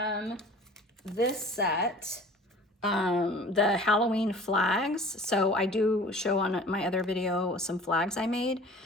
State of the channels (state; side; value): normal; both; correlation 0.44